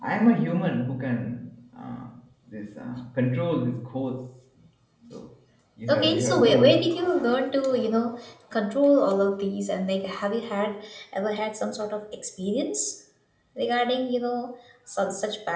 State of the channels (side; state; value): both; identical; correlation 1.00